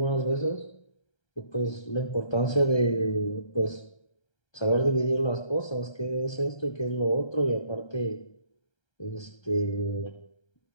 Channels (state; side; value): late; right; 1.3 ms